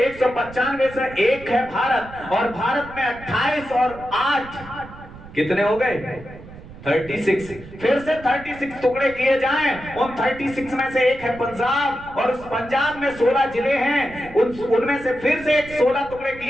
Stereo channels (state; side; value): noise; right; rumble, 17 dB below the sound